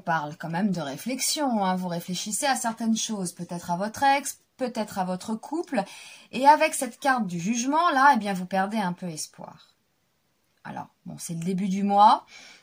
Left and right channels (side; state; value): both; identical; correlation 1.00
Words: quand même de réflexion, hein. Vous réfléchissez à certaines choses, peut-être à votre ex, peut-être à votre couple. Et avec cette carte du jugement, là, eh bien, vous perdez un peu espoir. Alors, bon, c'est le début du mois.